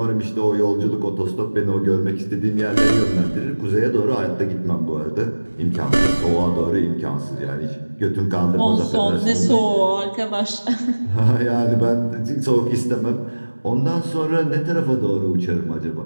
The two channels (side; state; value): both; inverted; correlation -1.00